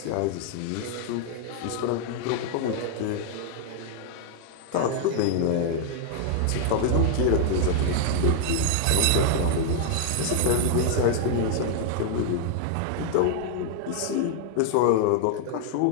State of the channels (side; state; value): both; different; correlation 0.00